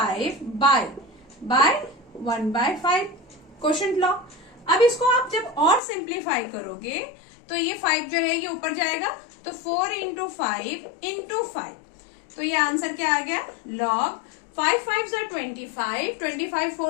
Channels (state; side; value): drops out; right; at 5.8 s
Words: by 1/5 quotient law. अब इसको आप जब और सिंप्लीफाई करोगे तो ये 5 जो है ये ऊपर जाएगा, तो 4 इंटू 5 इंटू 5, तो ये आंसर क्या आ गया, लॉग 5 5 25, 25